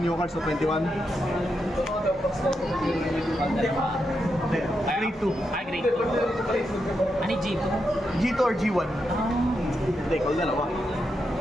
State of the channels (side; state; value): both; normal; correlation 0.84